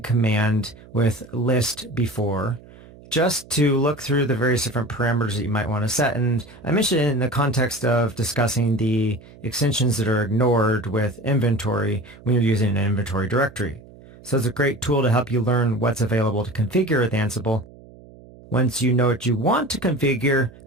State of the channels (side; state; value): right; noise; hum, 22 dB below the sound